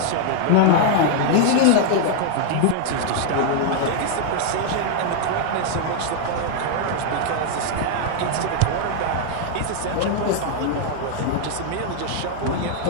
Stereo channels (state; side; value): different; both; correlation 0.00